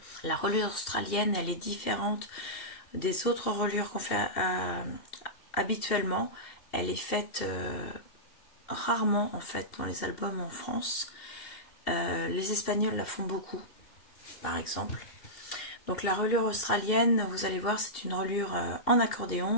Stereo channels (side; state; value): right; late; 2.7 ms